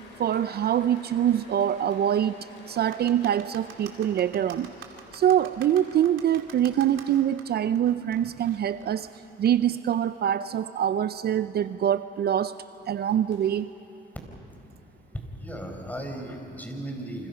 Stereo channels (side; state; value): left; quieter; 9.6 dB